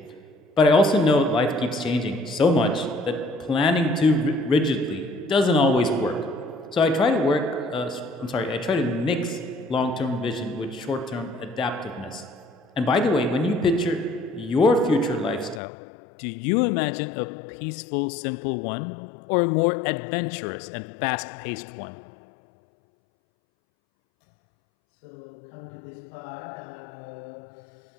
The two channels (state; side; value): drops out; right; at 15.6 s